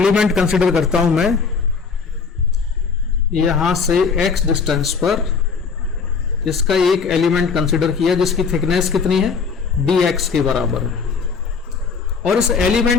कंसीडर करता हूं मैं, यहां से x डिस्टेंस पर इसका एक एलिमेंट कंसीडर किया जिसकी थिकनेस कितनी है? dx के बराबर है, और इस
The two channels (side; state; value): right; quieter; 5.4 dB